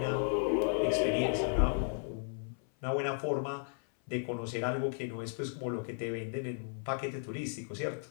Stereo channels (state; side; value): silent; right; 55 dB below the other